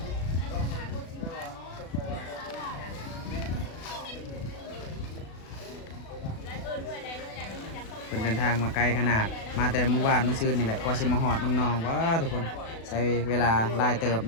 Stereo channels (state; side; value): late; right; 36 ms